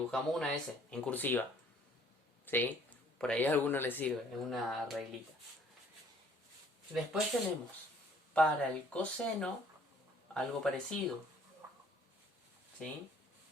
una S en cursiva, ¿sí? Por ahí a alguno le sirve, es una reglita. Después tenemos para el coseno algo parecido, ¿sí?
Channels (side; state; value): both; normal; correlation 0.58